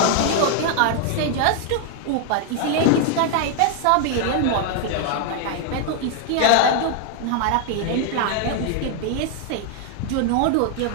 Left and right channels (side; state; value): both; different; correlation 0.00